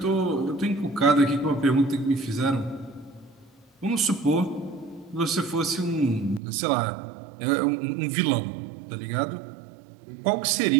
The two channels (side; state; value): left; drops out; at 6.4 s